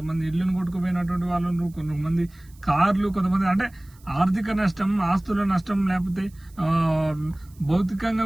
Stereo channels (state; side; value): noise; right; hiss, 29 dB below the sound